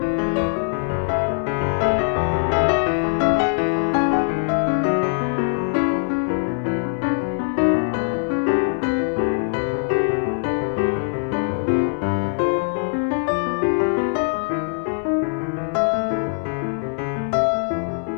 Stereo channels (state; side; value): silent; right; digital silence